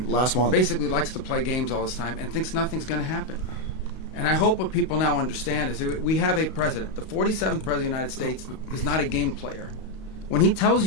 last month. Basically likes to play games all this time and thinks nothing's going to happen. And I hope what people now understand is that we have a president. The 47th president of the United States is not a game player. When he tells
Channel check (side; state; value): right; late; 32 ms